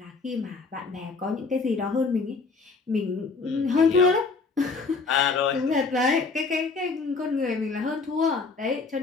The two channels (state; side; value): quieter; right; 4.3 dB